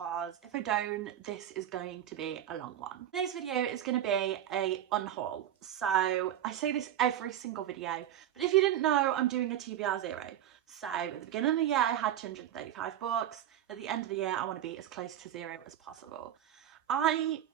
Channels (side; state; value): left; quieter; 11.2 dB